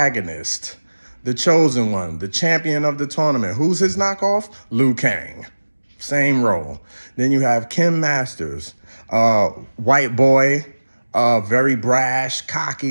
the chosen one, the champion of the tournament. Who's his knockoff? Liu Kang. Same role. Then you have Kim Masters, white boy, very brash,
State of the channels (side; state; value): both; inverted; correlation -1.00